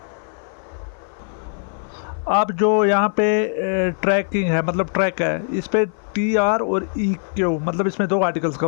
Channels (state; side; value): silent; right; 57 dB below the other